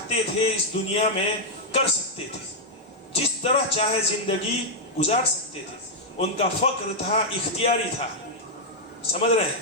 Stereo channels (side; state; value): both; normal; correlation -0.03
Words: تھے اس دنیا میں کر سکتے تھے، جس طرح چاہے زندگی گزار سکتے تھے۔ ان کا فقر تھا، اختیاری تھا، سمجھ رہے